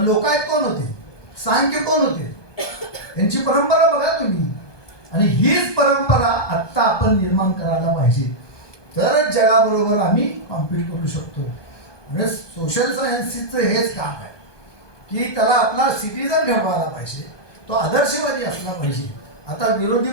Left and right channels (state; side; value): late; right; 1.2 ms